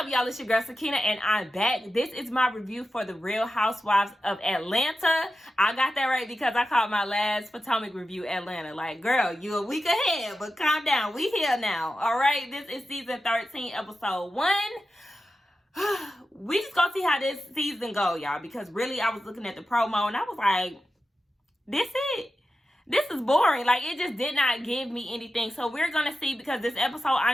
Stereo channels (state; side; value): normal; both; correlation 0.91